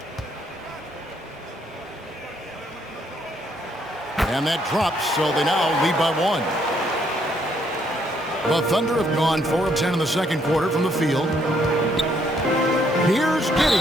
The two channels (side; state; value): both; normal; correlation 0.70